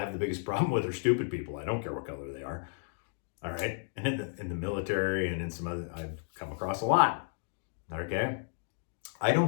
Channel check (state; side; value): silent; right; 56 dB below the other